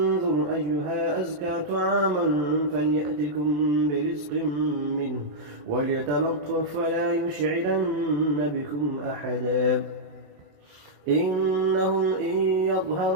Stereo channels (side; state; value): left; late; 27 ms